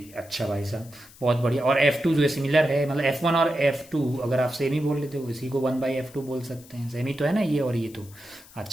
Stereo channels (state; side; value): noise; left; hiss, 22 dB below the sound